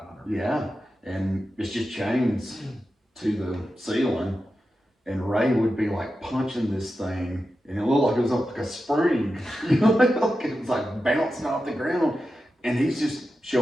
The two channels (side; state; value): both; normal; correlation 0.91